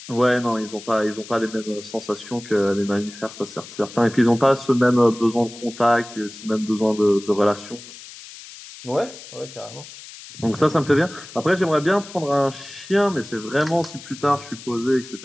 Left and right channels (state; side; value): noise; left; hiss, 16 dB below the sound